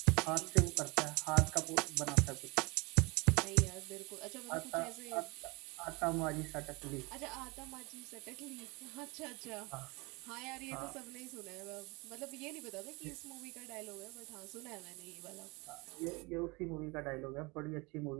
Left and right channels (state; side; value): quieter; left; 26.3 dB